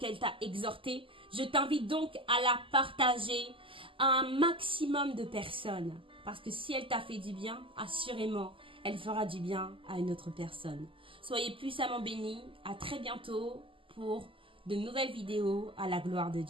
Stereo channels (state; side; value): late; left; 0.25 ms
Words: t'a exhorté, je t'invite donc à la partager à un maximum de personnes. Parce que si elle t'a fait du bien, assurément, elle fera du bien à une autre personne. Soyez puissamment bénis. À très bientôt pour de nouvelles vidéos à la gloire de